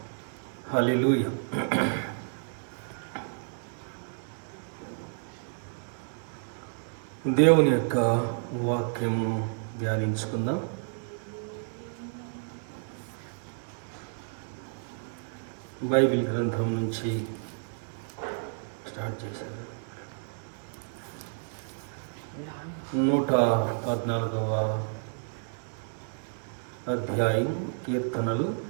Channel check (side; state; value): left; silent; 57 dB below the other